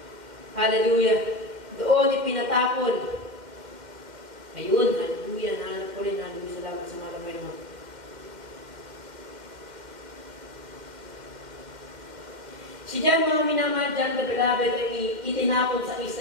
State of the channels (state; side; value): late; left; 2.1 ms